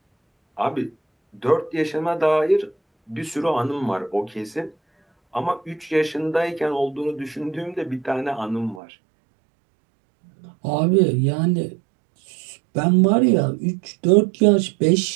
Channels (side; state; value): left; drops out; at 8.8 s